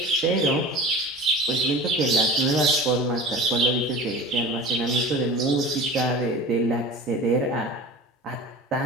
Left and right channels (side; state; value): both; normal; correlation 0.36